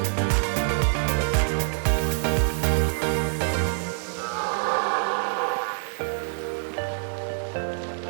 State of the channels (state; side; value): silent; left; digital silence